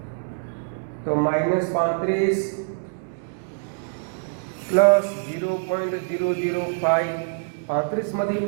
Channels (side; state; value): left; silent; digital silence